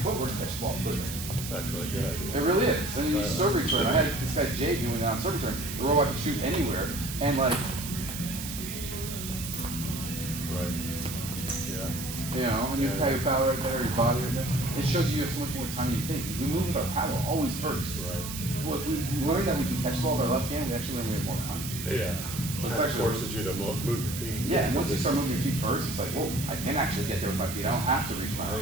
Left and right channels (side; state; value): right; noise; hiss, 8 dB below the sound